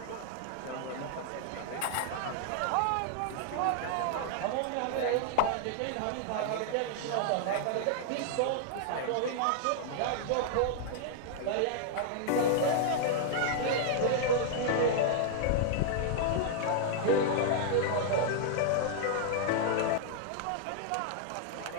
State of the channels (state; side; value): different; both; correlation -0.01